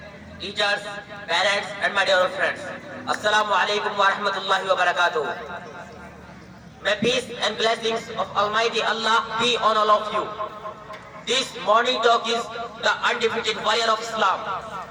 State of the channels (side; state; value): both; identical; correlation 1.00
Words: teachers, parents, and my dear friends. Assalamu alaikum wa rahmatullahi wa barakatuh. May peace and blessings of Almighty Allah be on all of you. This morning talk is the undefeated warrior of Islam.